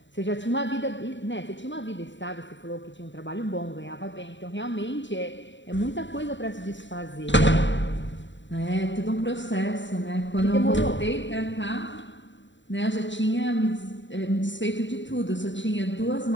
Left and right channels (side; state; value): right; late; 0.54 ms